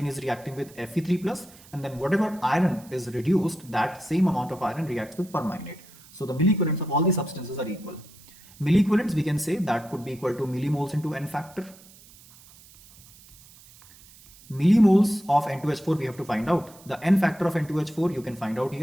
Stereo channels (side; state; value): right; noise; hiss, 23 dB below the sound